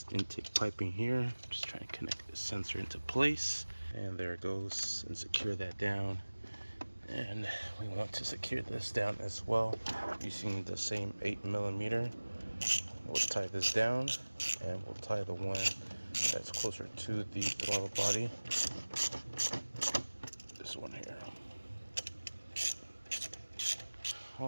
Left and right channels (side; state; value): both; inverted; correlation -1.00